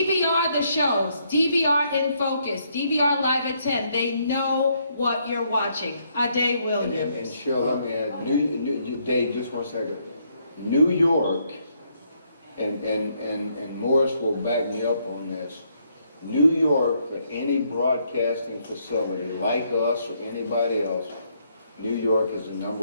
the shows, DVR in focus, DVR live at 10. They know what you're watching. Ade Williams. And Cheryl, let me add, Dave, just 1 second. New York, and Morris will back me up on this. New York, for any broadcasting facility like us or anybody else, New York is the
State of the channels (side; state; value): both; inverted; correlation -0.73